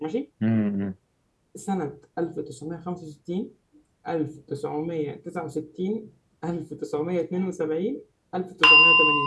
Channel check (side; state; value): both; identical; correlation 1.00